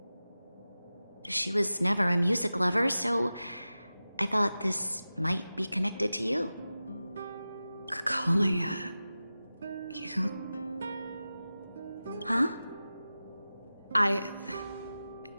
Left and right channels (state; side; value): inverted; both; correlation -0.95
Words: She was never a music lover, so I thought this might be connected to you. Kalia, you... Huh?